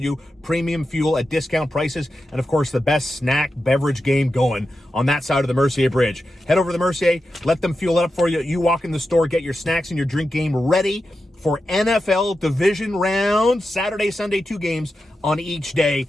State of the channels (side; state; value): both; normal; correlation 0.90